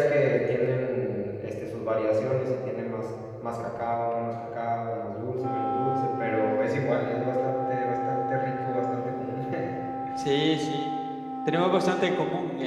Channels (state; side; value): identical; both; correlation 1.00